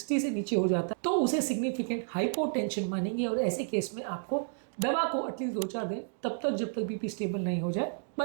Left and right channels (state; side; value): silent; left; digital silence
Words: से नीचे हो जाता है, तो उसे सिग्निफिकेंट हाइपोटेंशन मानेंगे। और ऐसे केस में आपको दवा को एटलीस्ट 2-4 दिन, तब तक जब तक बीपी स्टेबल नहीं हो जाए,